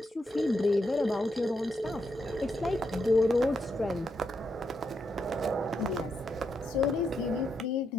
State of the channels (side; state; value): both; normal; correlation 0.82